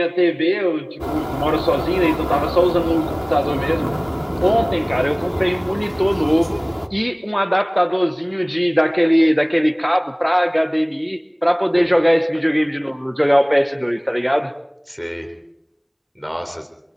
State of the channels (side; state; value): both; identical; correlation 1.00